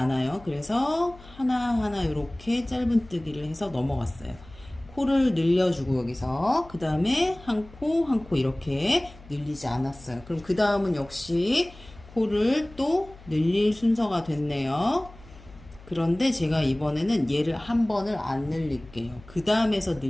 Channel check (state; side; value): noise; left; hum, 21 dB below the sound